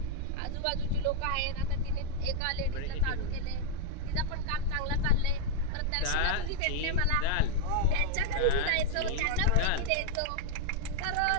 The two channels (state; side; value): different; both; correlation 0.00